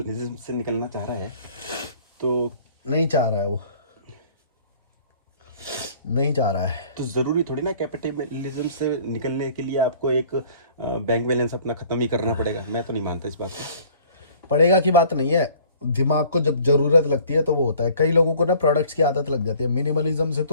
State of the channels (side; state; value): both; inverted; correlation -0.52